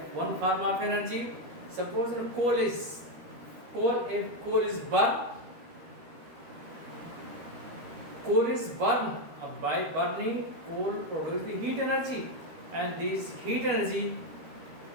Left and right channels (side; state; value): left; late; 13 ms